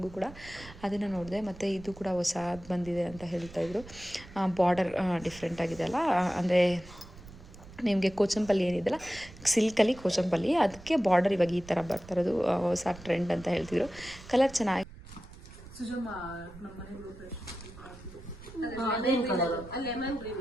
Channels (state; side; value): noise; right; rumble, 18 dB below the sound